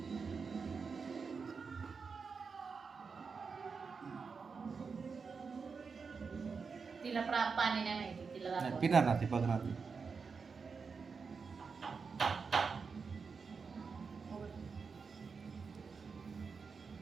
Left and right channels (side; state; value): left; quieter; 5.2 dB